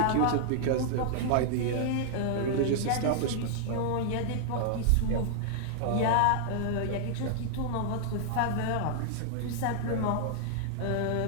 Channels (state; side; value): different; both; correlation -0.01